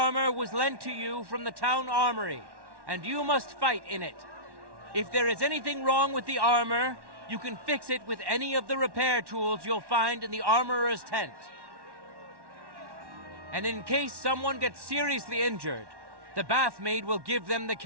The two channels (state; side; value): late; left; 1.1 ms